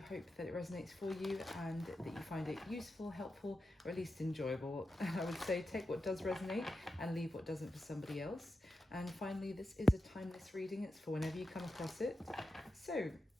hope that it resonates for you and that you find it useful, helpful, or at least enjoyable. I would say take what does resonate and leave what doesn't for somebody else. And finally, this is a timeless reading. It's for whenever you come across it. So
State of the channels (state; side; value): normal; both; correlation 0.90